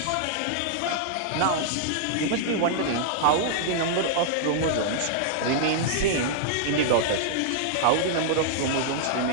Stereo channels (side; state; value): both; different; correlation -0.01